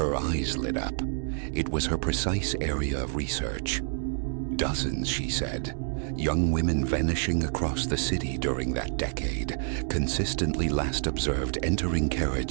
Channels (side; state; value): left; silent; digital silence